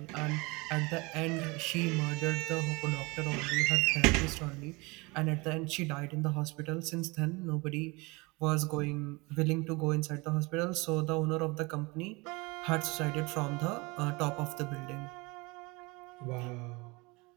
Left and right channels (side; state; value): left; quieter; 25.6 dB